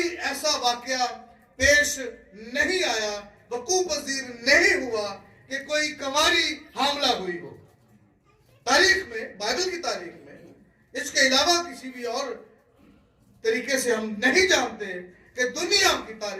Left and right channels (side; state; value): both; identical; correlation 1.00